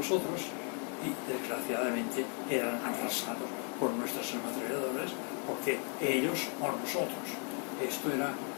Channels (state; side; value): quieter; right; 39.9 dB